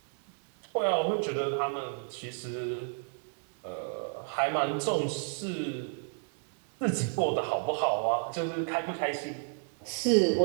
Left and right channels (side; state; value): left; silent; 57 dB below the other